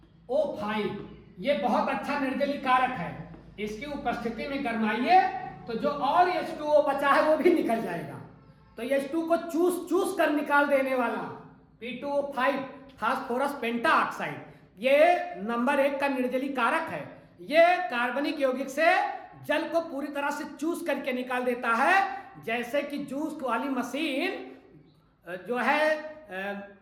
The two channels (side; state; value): both; identical; correlation 1.00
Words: ये बहुत अच्छा निर्जलीकरण कारक है। इसकी उपस्थिति में गरमाइए तो जो और H2O बचा है वो भी निकल जाएगा। तो H2 को चूस कर निकाल देने वाला P2O5 फास्फोरस पेंटा ऑक्साइड, ये नंबर 1 का निर्जलीकरण कारक है। ये कार्बनिक यौगिक से जल को पूरी तरह से चूस करके निकाल देता है, जैसे कि जूस वाली मशीन जो है